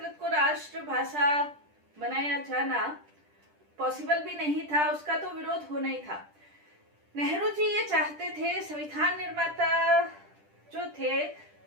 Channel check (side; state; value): left; late; 10 ms